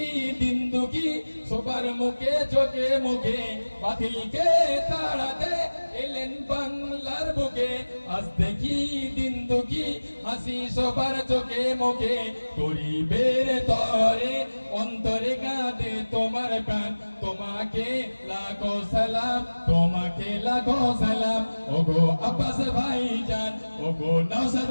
দিন দুঃখী সবার মুখে চোখে মুখে বাতিলকে তাড়াতে এলেন বাংলার বুকে আজ দেখি দিন দুঃখী হাসি সবার চোখে মুখে গরিবের তরে অন্তরে কাঁদে তোমার প্রাণ তোমাকে লাখো সালাম তোমাকে লাখো সালাম ওগো আব্বাস ভাইজান ওগো নওশাদ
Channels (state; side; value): inverted; both; correlation -1.00